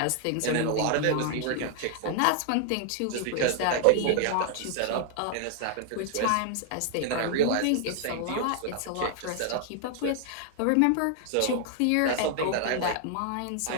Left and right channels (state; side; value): different; both; correlation 0.00